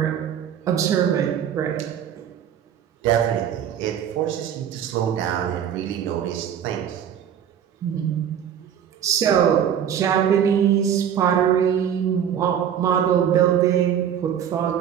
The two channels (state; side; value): quieter; left; 9.1 dB